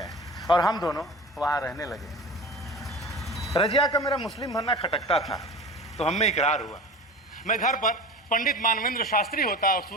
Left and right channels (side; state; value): both; normal; correlation 0.35